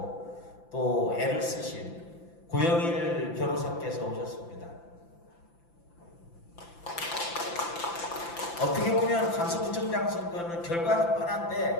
또 애를 쓰신 고영일 변호사께서 오셨습니다. 어떻게 보면 강서구청장 선거는 결과는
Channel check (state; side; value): late; right; 5.9 ms